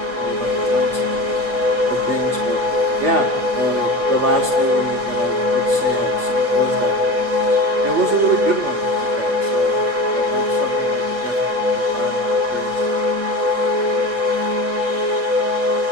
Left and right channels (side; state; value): left; late; 8.3 ms